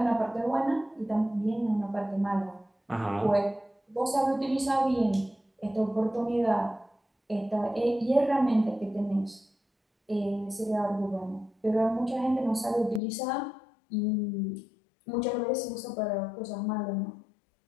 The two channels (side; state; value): right; drops out; at 13.0 s